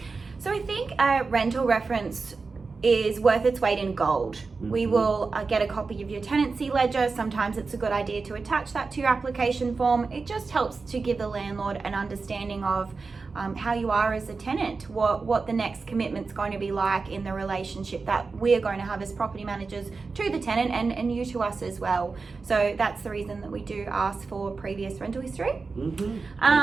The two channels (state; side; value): quieter; left; 4.3 dB